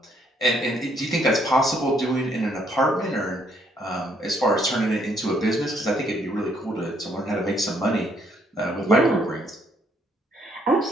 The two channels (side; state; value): both; normal; correlation 0.69